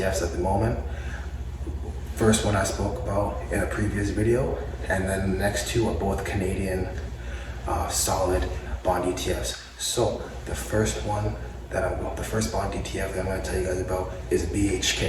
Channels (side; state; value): both; identical; correlation 1.00